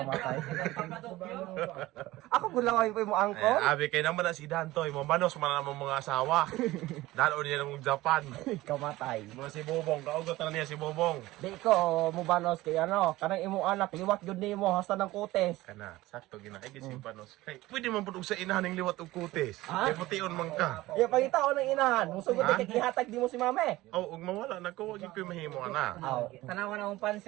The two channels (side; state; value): left; quieter; 18.0 dB